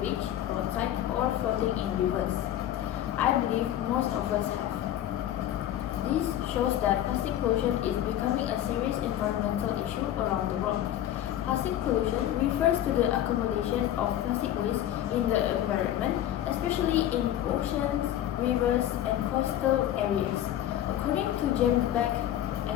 roadside, or floating in rivers? I believe most of us have. This shows that plastic pollution is becoming a serious environmental issue around the world. Plastic pollution refers to the accumulation of plastic waste in the environment, especially in oceans, rivers, and coastal areas. According to James Beck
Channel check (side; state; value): right; quieter; 12.2 dB